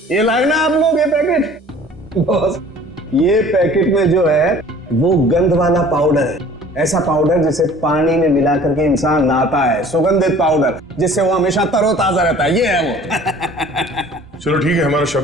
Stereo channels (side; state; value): both; normal; correlation 0.49